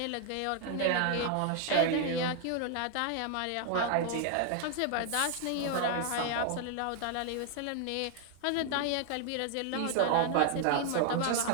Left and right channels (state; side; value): different; both; correlation 0.00